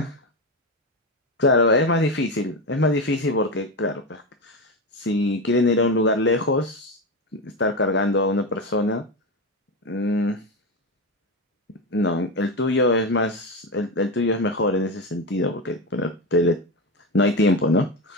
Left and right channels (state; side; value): normal; both; correlation 0.16